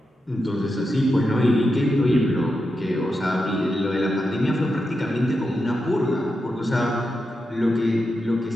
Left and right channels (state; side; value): normal; both; correlation 0.88